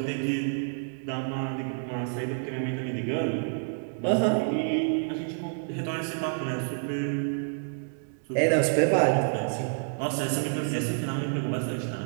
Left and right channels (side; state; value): left; silent; digital silence